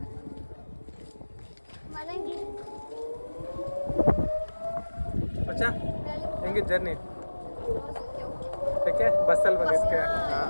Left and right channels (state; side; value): inverted; both; correlation -1.00